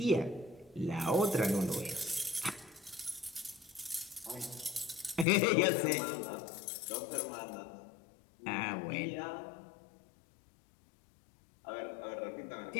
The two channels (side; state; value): right; drops out; at 5.2 s